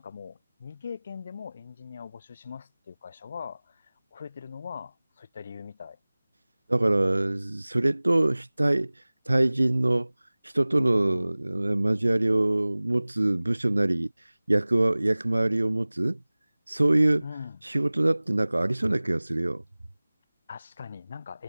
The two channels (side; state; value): both; inverted; correlation -1.00